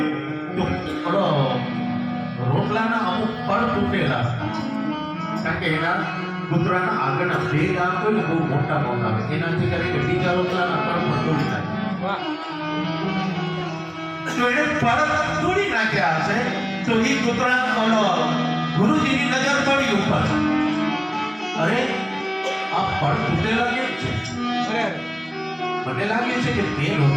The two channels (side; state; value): both; identical; correlation 1.00